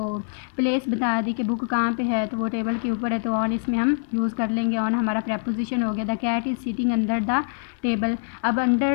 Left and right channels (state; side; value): silent; right; digital silence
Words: प्लेस बता दी कि बुक कहाँ पे है, तो वो टेबल के ऊपर है, तो ऑन इसमें हम यूज़ कर लेंगे। ऑन हमारा प्रेपोजिशन हो गया। The cat is sitting under the table. अब